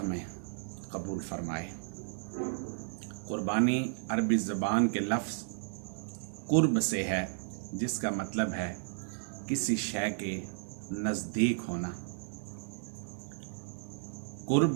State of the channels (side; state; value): left; silent; digital silence